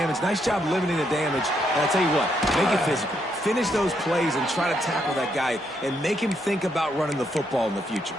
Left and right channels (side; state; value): both; normal; correlation 0.76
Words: Nice job limiting the damage. And I'll tell you what, make it physical. Finish those plays and try to tackle that guy and make him think about running the football in the future.